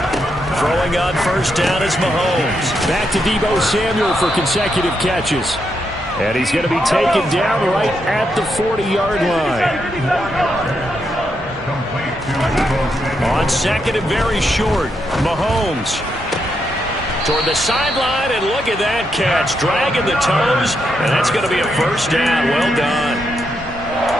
Throwing on first down is Mahomes. Back to Deebo Samuel for consecutive catches. And he's going to be taken down right at the 40-yard line. On second and very short, Mahomes toward the sideline, and look at that catch. Dragging the toes, and that's going to be a first down. Well done.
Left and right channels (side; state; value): both; normal; correlation 0.81